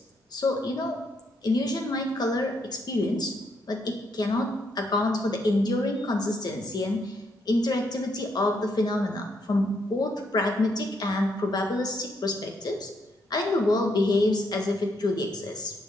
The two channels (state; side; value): normal; both; correlation 0.75